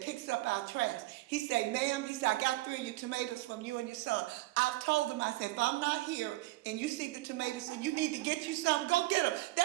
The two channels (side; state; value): left; quieter; 19.1 dB